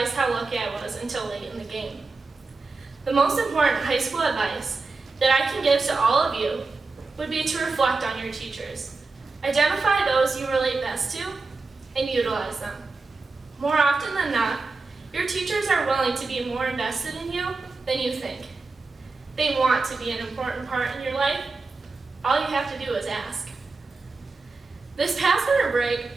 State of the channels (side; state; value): left; quieter; 3.9 dB